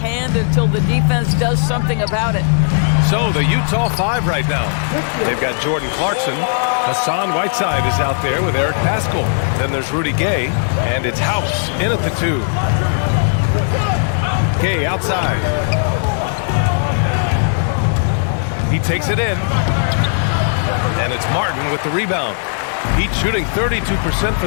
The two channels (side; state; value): right; silent; digital silence